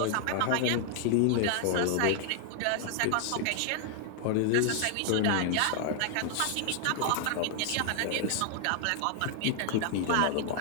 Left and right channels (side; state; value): both; different; correlation 0.00